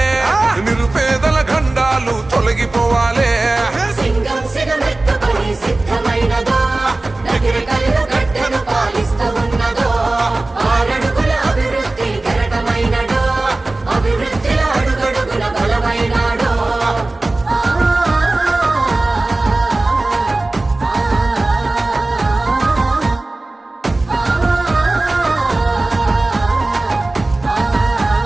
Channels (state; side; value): quieter; left; 3.0 dB